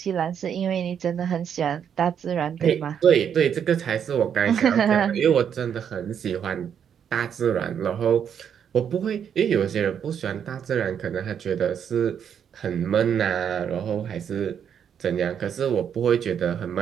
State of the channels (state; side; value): quieter; left; 8.2 dB